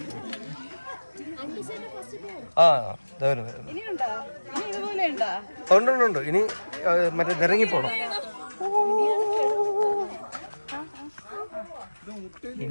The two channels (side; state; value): both; inverted; correlation -1.00